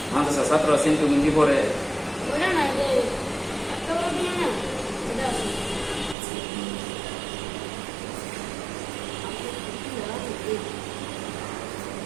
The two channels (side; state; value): left; drops out; at 6.2 s